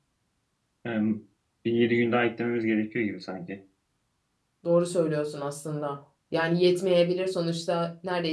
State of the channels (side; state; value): both; identical; correlation 1.00